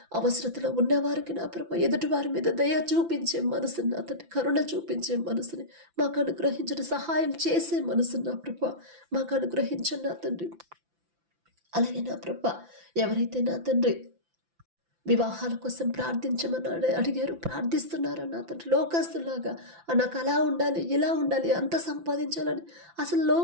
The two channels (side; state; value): left; late; 5.9 ms